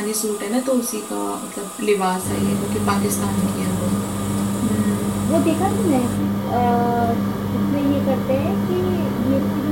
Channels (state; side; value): identical; both; correlation 1.00